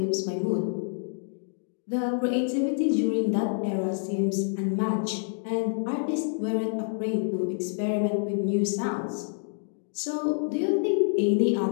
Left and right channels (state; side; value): silent; right; digital silence